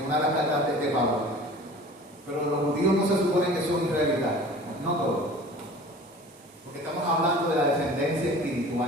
una de las cartas de Pablo. Pero los judíos no se supone que son israelitas, no todos. Porque estamos hablando de la descendencia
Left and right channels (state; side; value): normal; both; correlation 0.43